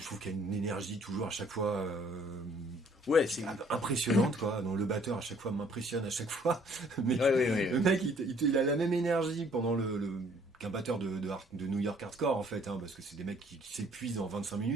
trouve qu'il y a une énergie toujours à chaque fois Ouais, c'est impressionnante, quoi. Donc, le batteur à chaque fois m'impressionne à chaque fois. Mais Ouais. le mec, il a la même énergie pendant qu'un batteur de New York hardcore, en fait, hein, parce que c'est des mecs qui s'épuisent en 25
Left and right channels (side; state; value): both; normal; correlation 0.60